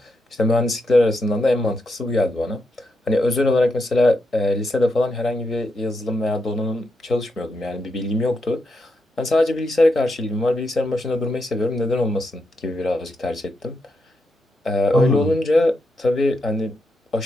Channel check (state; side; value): normal; both; correlation 0.83